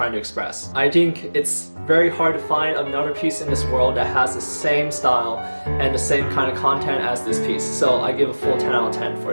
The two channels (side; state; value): both; inverted; correlation -1.00